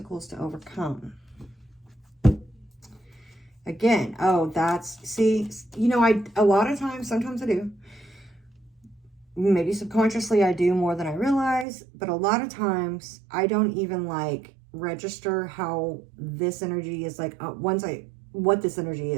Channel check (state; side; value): drops out; left; at 11.7 s